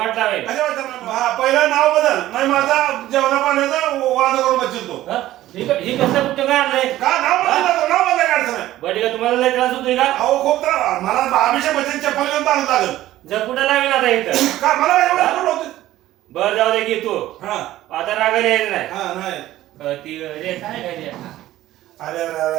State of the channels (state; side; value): quieter; left; 14.7 dB